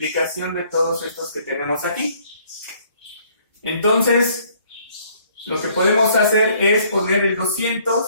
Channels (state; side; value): inverted; both; correlation -0.62